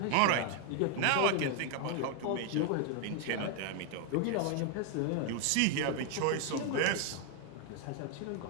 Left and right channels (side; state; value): both; different; correlation 0.00